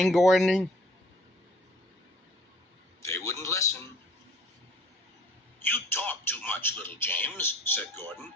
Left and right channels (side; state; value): both; normal; correlation 0.54